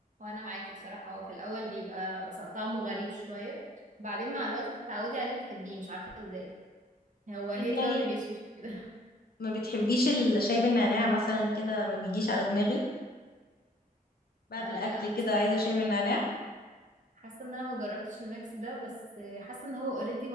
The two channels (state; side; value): normal; both; correlation 0.56